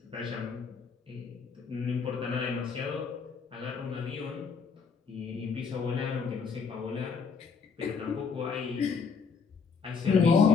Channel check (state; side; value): quieter; right; 5.4 dB